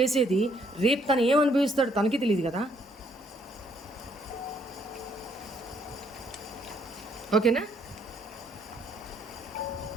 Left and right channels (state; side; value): normal; both; correlation 0.68